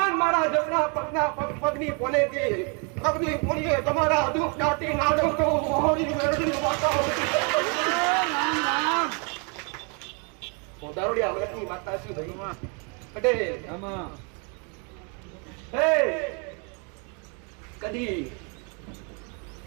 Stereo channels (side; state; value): left; quieter; 35.8 dB